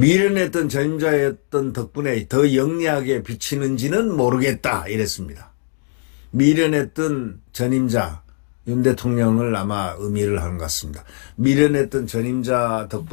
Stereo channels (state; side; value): silent; right; 64 dB below the other